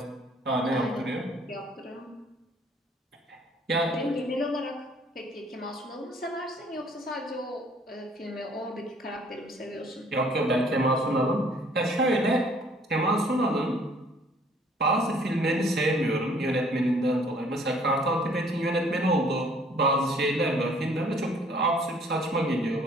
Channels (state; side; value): normal; both; correlation 0.58